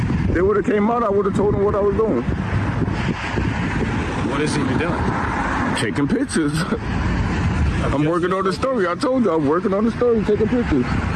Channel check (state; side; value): identical; both; correlation 1.00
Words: They would have came out, I would have told them what I was doing. What is he doing? Taking pictures. I'm working on the story. I told you I'm working on the story, taking pictures.